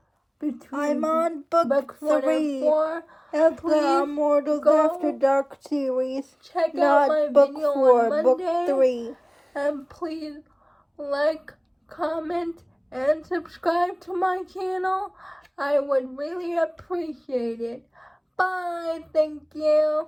between I'm on book 3 4, of the Immortals After Dark series. Check Not out my book video 4, on Monday, book 3. and please like, comment, and subscribe to my channel. I would really appreciate it. Bye. Thank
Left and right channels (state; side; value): identical; both; correlation 1.00